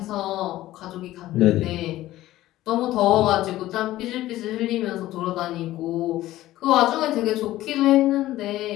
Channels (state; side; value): quieter; right; 15.4 dB